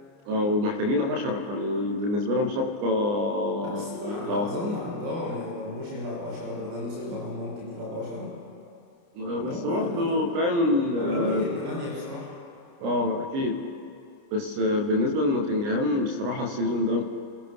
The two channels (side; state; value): left; late; 29 ms